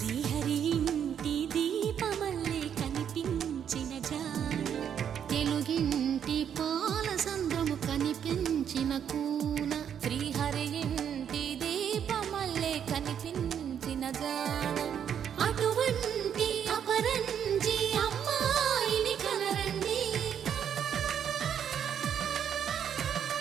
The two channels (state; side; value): quieter; left; 8.6 dB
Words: ఇంటి దీపమల్లే కనిపించిన జాన తెలుగింటి పాల సంద్రము కనిపించిన కూన శ్రీహరి ఇంటి దీపమల్లే కనిపించిన జాన అటువంటి అపరంజి అమ్మాయిని కనరండి